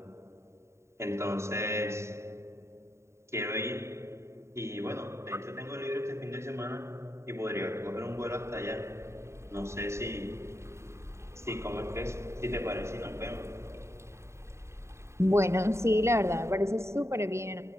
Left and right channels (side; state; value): left; late; 0.13 ms